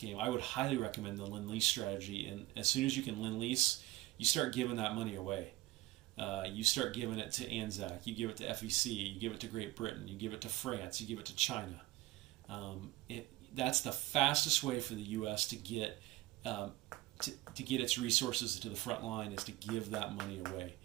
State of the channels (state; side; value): quieter; left; 17.9 dB